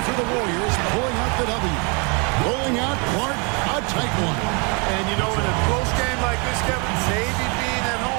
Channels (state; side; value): quieter; left; 32.6 dB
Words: for the Warriors, pulling out the W. Rolling out Clark, a tight one. And, you know, in a close game like this, Kevin, maybe being at